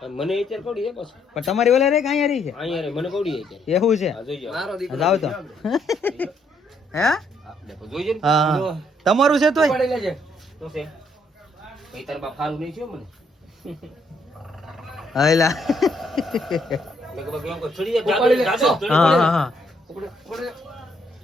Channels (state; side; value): normal; both; correlation 0.71